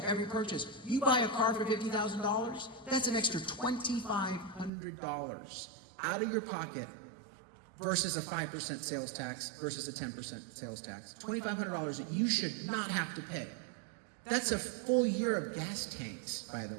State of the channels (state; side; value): drops out; left; at 4.7 s